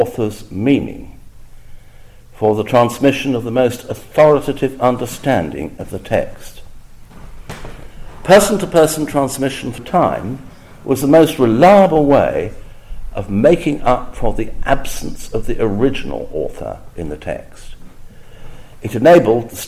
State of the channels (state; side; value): identical; both; correlation 1.00